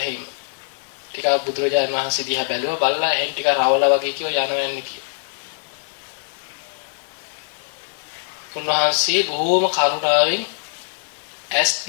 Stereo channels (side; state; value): right; silent; 56 dB below the other